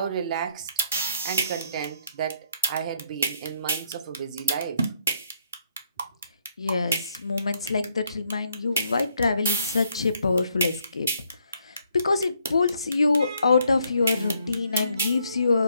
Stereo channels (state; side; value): inverted; both; correlation -0.71